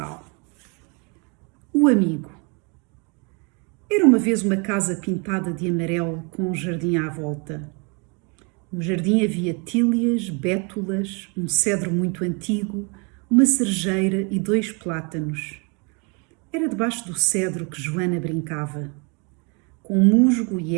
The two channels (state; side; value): quieter; left; 33.0 dB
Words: O amigo. Era uma vez uma casa pintada de amarelo com um jardim à volta. No jardim havia tílias, bétulas, um cedro muito antigo, uma cerejeira e 2 plátanos. Era debaixo do cedro que Joana brincava. Com musgo e